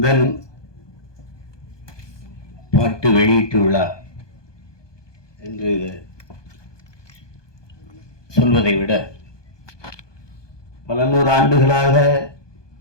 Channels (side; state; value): right; late; 1.2 ms